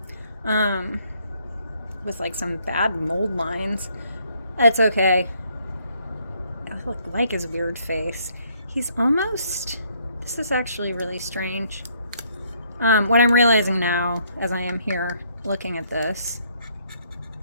with like some bad mold lines. That's okay. I look like his weird face. He's almost. This is actually really strange. What I'm realizing now, as I am here looking at this,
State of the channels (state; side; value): inverted; both; correlation -0.68